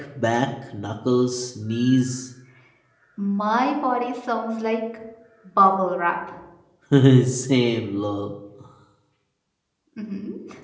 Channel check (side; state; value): both; identical; correlation 1.00